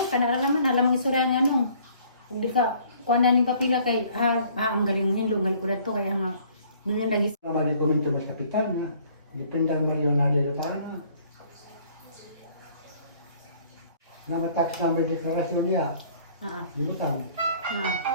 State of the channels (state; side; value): inverted; both; correlation -0.57